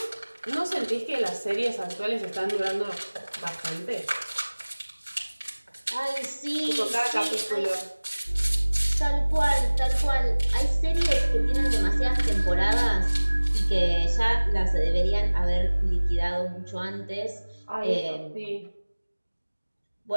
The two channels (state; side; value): inverted; both; correlation -1.00